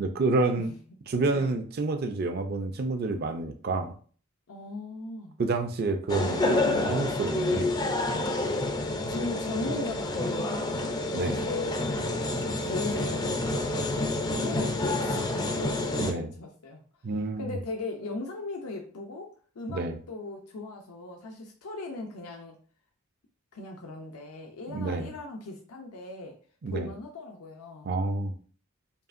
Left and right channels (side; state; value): both; normal; correlation 0.44